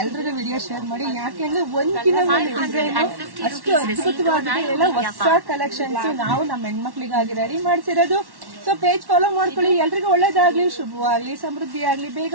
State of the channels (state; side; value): late; left; 1.1 ms